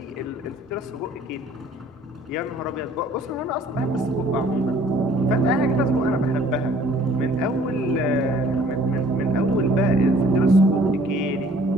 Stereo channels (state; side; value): normal; both; correlation 0.55